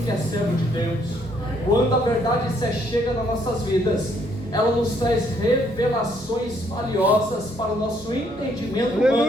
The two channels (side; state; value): both; normal; correlation 0.69